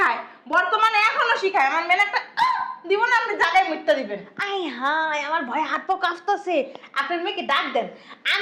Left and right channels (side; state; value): both; identical; correlation 1.00